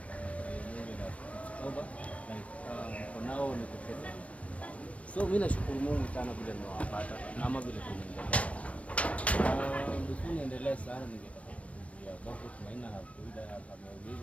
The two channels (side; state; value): right; late; 0.064 ms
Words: Mungu na over like for now niko safe. So mimi nashukuru Mungu sana vile nimewapata na ama vile tunaendelea. Before niendelee sana ningetaka kujua bado tumaina hakuida